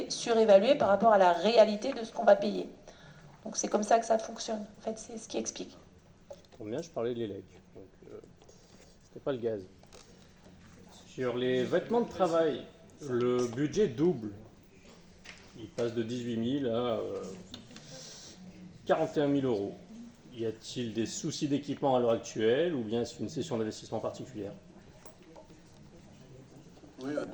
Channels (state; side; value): identical; both; correlation 1.00